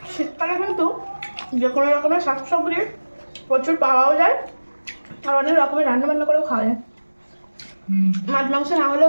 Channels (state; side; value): inverted; both; correlation -1.00